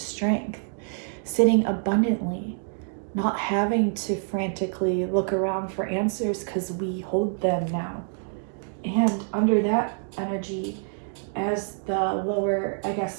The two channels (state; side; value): silent; left; digital silence